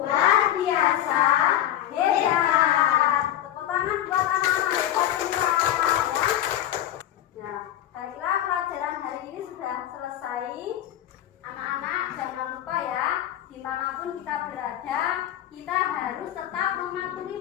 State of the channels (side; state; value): right; quieter; 12.1 dB